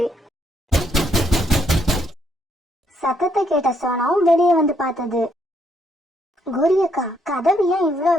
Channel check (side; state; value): both; normal; correlation 0.73